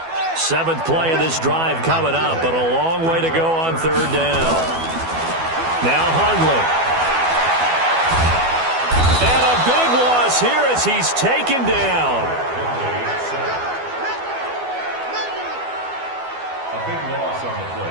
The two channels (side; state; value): left; late; 12 ms